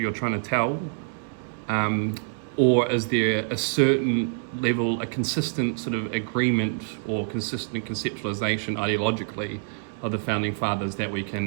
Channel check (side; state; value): left; silent; digital silence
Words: trying to tell, or is there a certain level, a consistent sort of agreement or consistent conceptualization ideologically of the founding fathers that we